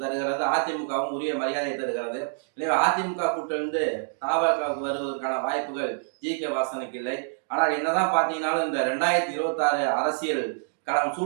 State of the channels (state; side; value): silent; left; digital silence